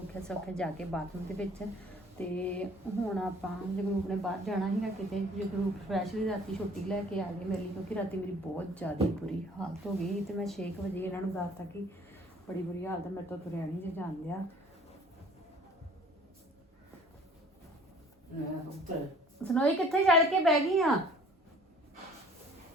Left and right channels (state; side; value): normal; both; correlation 0.53